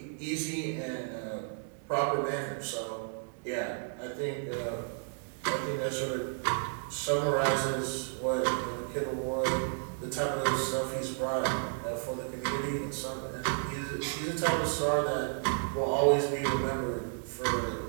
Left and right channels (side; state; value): left; silent; digital silence